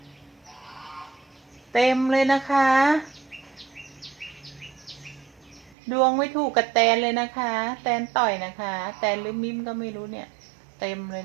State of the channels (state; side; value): drops out; left; at 5.8 s